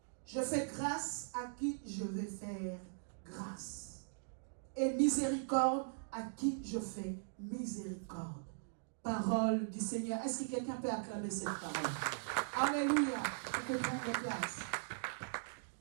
Je fais grâce à qui je vais faire grâce, et miséricorde à qui je fais miséricorde. Parole du Seigneur. Est-ce que quelqu'un peut acclamer cette parole? Alléluia. Tu peux prendre place.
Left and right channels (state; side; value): silent; left; digital silence